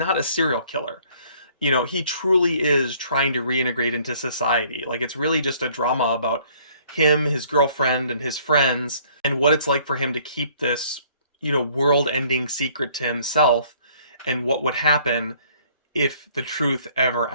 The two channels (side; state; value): both; inverted; correlation -0.59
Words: a serial killer. He truly is trying to reintegrate into society. Like, it's really just a drama about him, his girlfriend, and his friends, and what it's like for him to keep this, world-ending secret to himself, and what would happen if the truth ever